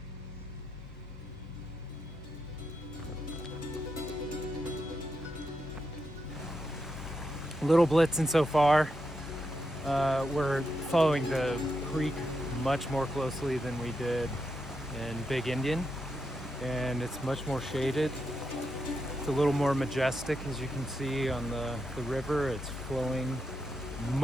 Little Blitzen so far. We're following the creek much more closely than we did in Big Indian, and it's much more shaded. It's a little more majestic, as you can see on the river. It's flowing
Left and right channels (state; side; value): normal; both; correlation 0.85